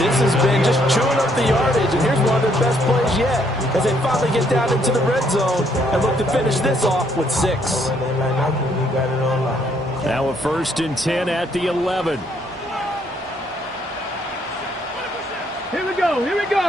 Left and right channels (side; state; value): both; normal; correlation 0.69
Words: has been, just chewing up the yardage, and here's one of their best plays yet as they finally get down into the red zone and look to finish this off with 6. Now a 1st and 10 at the 11. Here we go, here we